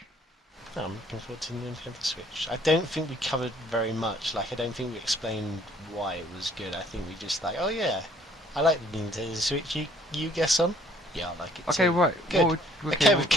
No, I'm looking forward to the Nintendo Switch. I don't think we covered very much. Like, I don't think we explained why it was good. I think we just like, oh yeah, I like the Nintendo Switch. You guess on? Yeah, I like it Okay, too. right. Good. Okay, we've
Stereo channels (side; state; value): both; normal; correlation 0.60